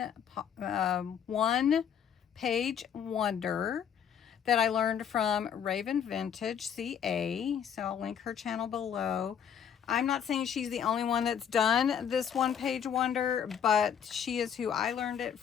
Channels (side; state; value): right; quieter; 8.3 dB